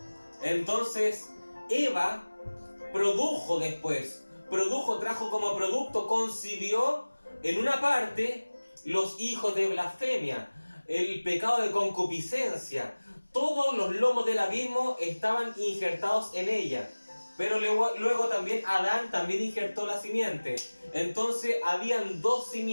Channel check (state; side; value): inverted; both; correlation -1.00